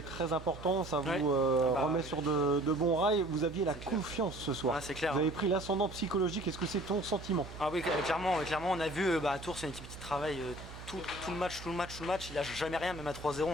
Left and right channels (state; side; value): noise; right; hum, 14 dB below the sound